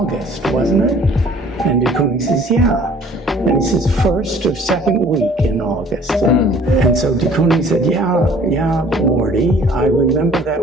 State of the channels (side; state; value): both; normal; correlation 0.54